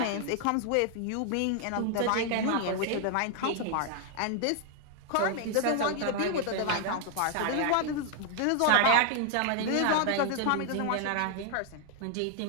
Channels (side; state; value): both; different; correlation 0.00